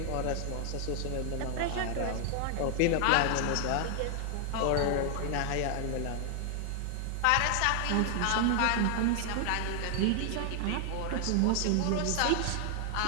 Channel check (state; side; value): different; both; correlation 0.00